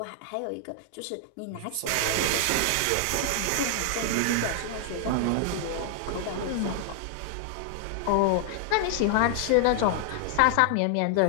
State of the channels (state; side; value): different; both; correlation 0.00